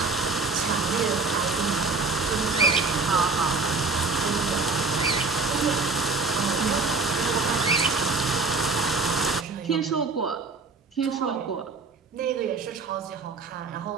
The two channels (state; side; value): quieter; left; 4.0 dB